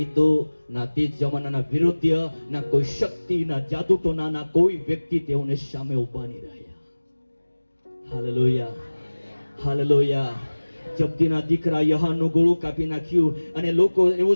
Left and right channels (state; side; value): inverted; both; correlation -1.00